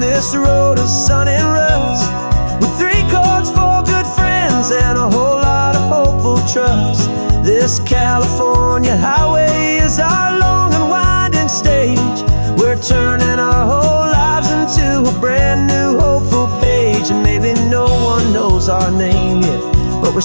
this road of sun and rust, with 3 chords, 4 good friends, and a whole lot of hopeful trust. This California highway is our long and winding stage. We're turning our whole lives into a brand new hopeful page. And maybe no one knows our name yet, but we're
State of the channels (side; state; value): both; inverted; correlation -1.00